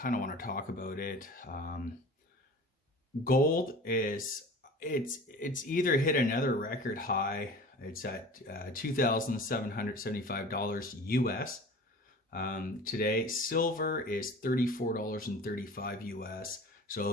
of want to talk about it. Gold it's either hit another record high. It's at $2,775 US. Today, silver is $34.35 US.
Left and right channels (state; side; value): normal; both; correlation 0.40